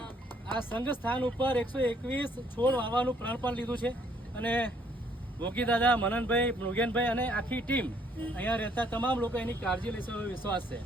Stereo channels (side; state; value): both; normal; correlation 0.66